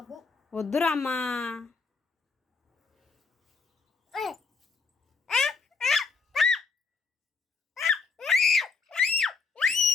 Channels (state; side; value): quieter; right; 4.7 dB